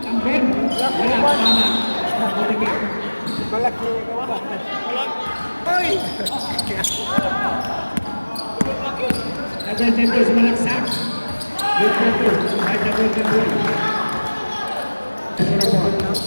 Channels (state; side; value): inverted; both; correlation -1.00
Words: Number. Wala. Tama. Mabuti. Malaki ka ba? Oy! Number 10 sumalaksak. Good photo. Right na golden goal. Number 4,